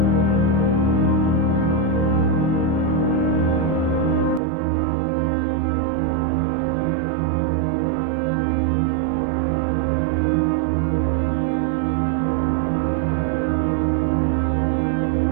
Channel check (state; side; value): drops out; left; at 4.4 s